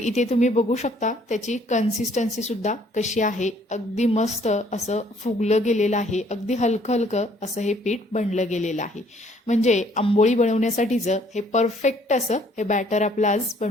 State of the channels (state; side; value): normal; both; correlation 0.62